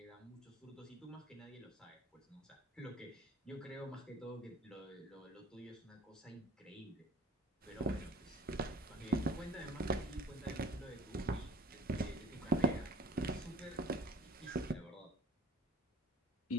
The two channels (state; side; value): normal; both; correlation 0.47